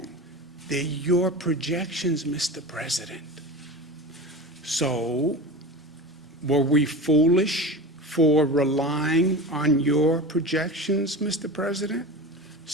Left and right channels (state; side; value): normal; both; correlation 0.29